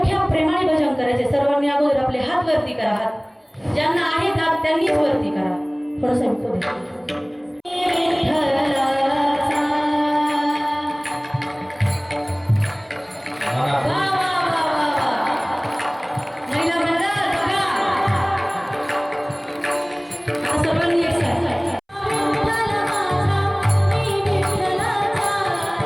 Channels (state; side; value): identical; both; correlation 1.00